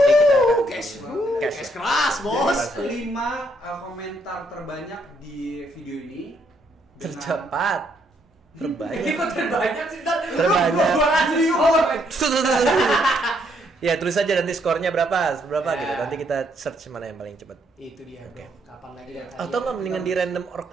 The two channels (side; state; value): both; normal; correlation 0.72